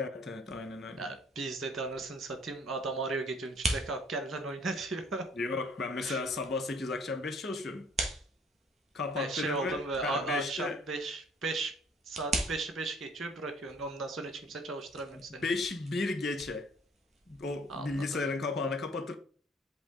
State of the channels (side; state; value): both; normal; correlation 0.57